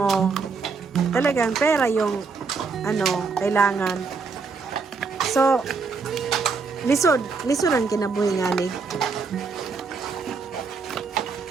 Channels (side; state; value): left; quieter; 4.8 dB